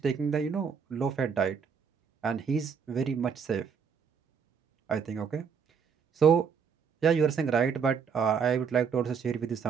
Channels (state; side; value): quieter; left; 6.5 dB